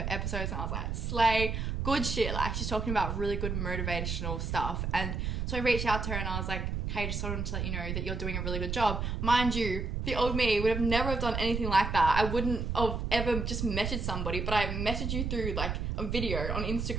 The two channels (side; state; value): right; noise; rumble, 2 dB below the sound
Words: episodes and I was like, slay. Good shit. Like, she's talking about really good motivational stuff. And so I reached out to her and I was like, hey, just wanted to let you know that you're doing a really good job. Mind you, the old me would have never have done anything like that. I wouldn't have ever just messaged somebody, but I messaged you through like a video on